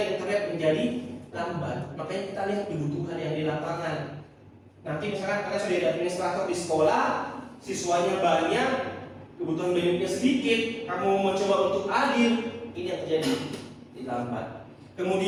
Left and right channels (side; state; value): both; identical; correlation 1.00